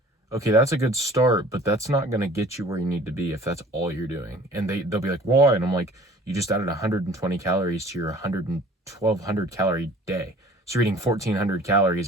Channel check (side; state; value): both; normal; correlation 0.49